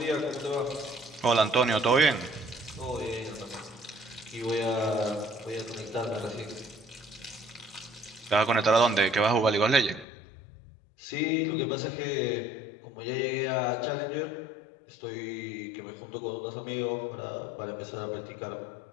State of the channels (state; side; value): drops out; right; at 10.1 s